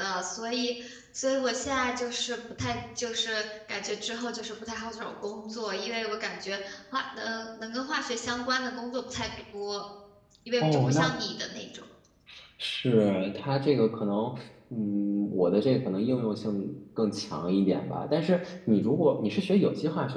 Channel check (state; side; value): identical; both; correlation 1.00